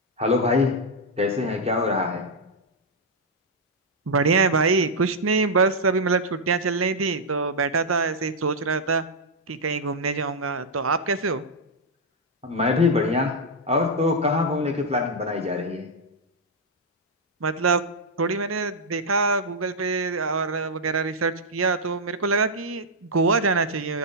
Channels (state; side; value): normal; both; correlation -0.03